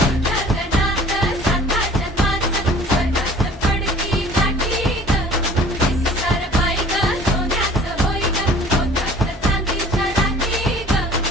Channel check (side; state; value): both; normal; correlation 0.49